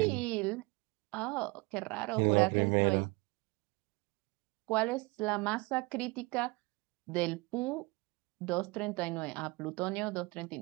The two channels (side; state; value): left; quieter; 25.5 dB